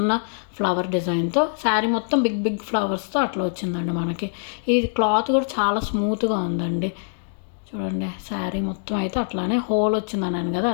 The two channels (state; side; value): silent; right; digital silence